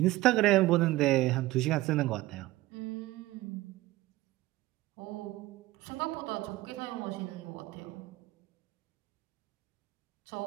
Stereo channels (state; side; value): quieter; left; 17.9 dB